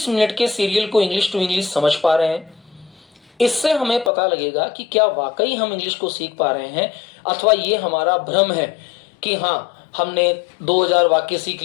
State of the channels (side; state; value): right; drops out; at 4.1 s